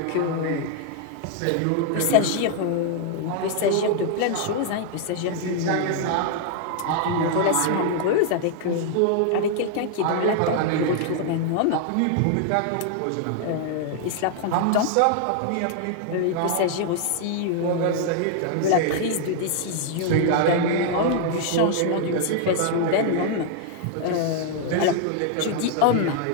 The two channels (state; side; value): different; both; correlation 0.00